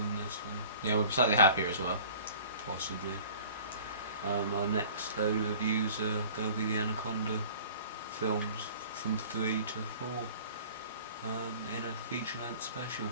this one. Yeah, we're slightly happier as well. Possibly. Our next load of reviews are going to be the Anaconda films from 3 to 4 in a feature-length special.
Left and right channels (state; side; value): inverted; both; correlation -0.46